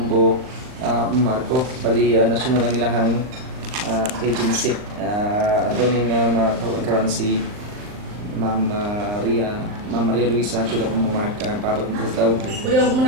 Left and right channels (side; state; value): left; late; 39 ms